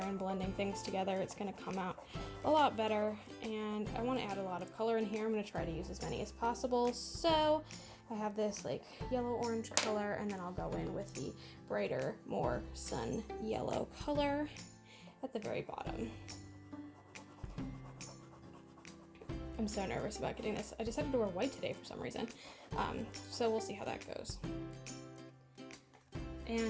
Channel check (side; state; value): both; identical; correlation 1.00